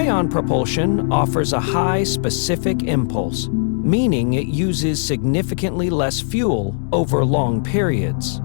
propulsion offers a high specific impulse, meaning it uses significantly less fuel over long periods.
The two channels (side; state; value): right; silent; digital silence